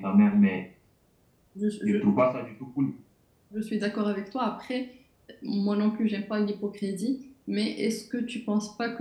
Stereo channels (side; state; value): both; identical; correlation 1.00